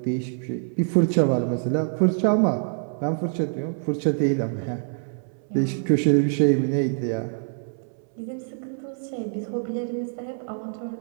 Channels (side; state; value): left; silent; 62 dB below the other